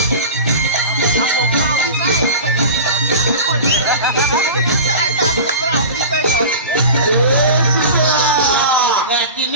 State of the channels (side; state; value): both; inverted; correlation -0.33